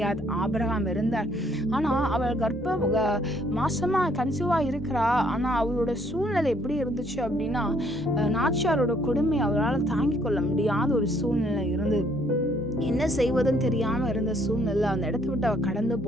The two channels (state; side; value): normal; both; correlation 0.65